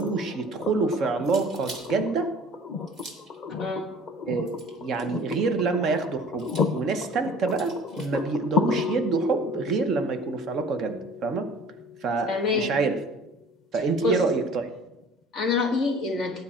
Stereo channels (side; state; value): both; normal; correlation 0.47